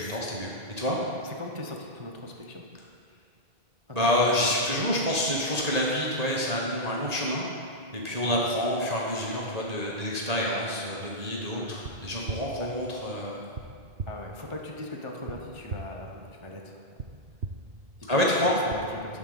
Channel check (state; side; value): late; left; 1.8 ms